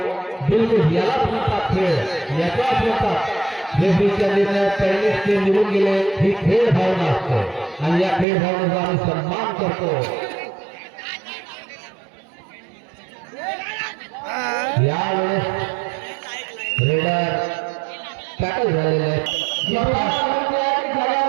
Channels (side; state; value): left; drops out; at 8.2 s